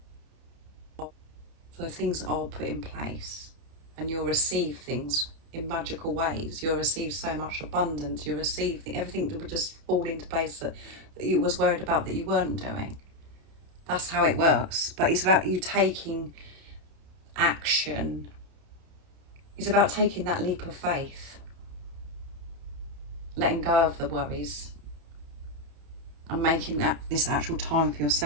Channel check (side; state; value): left; late; 30 ms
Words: So things are put in place and you'll receive things in magical ways. You'll receive so much abundance. You'll receive everything that would just fall into place that you was worried about that you weren't doing. That's how it works. But it's about you taking action. It's about taking that leap of faith. Letting go of the worries. And making this actual time for